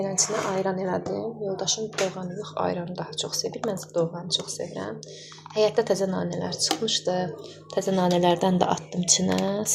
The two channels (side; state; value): both; identical; correlation 1.00